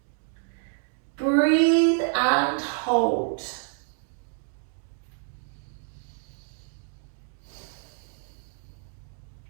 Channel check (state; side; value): silent; left; 59 dB below the other